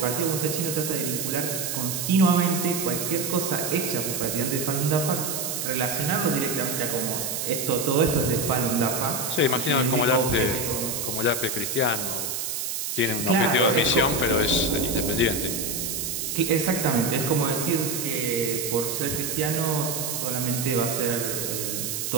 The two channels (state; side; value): noise; right; hiss, 3 dB below the sound